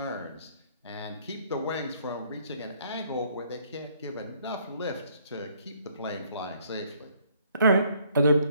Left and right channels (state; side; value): inverted; both; correlation -0.64